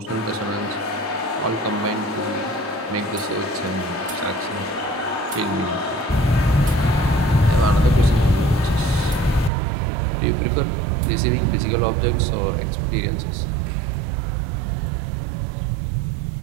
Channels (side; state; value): left; drops out; at 9.5 s